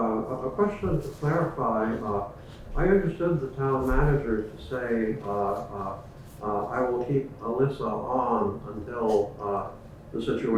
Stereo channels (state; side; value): identical; both; correlation 1.00